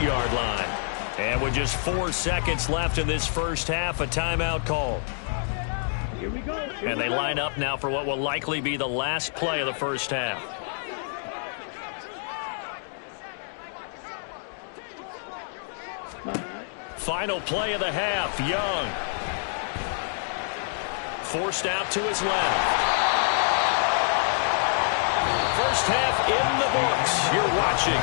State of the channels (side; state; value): right; silent; digital silence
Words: line. And with just 4 seconds left in this first half, a timeout call. Here we go. And they line up now for what will likely be the last play of the first half. Final play of the half, Young. Forced out to his left. First half in the books. You're watching